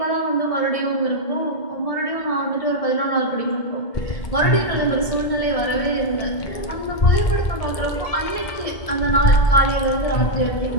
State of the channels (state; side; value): late; right; 1.7 ms